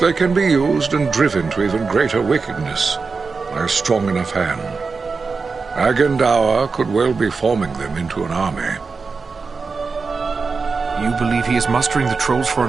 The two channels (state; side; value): quieter; left; 4.6 dB